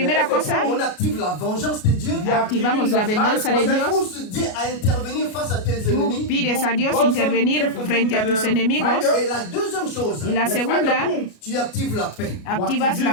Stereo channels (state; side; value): late; right; 33 ms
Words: cosa, on active la vengeance de Dieu. activamos la venganza de Tu Dios. pousses Dieu à intervenir face à tes Tú ennemis. pides a Dios intervenir frente a tus enemigos. Et la deuxième chose, Y la segunda, tu actives la paix. activas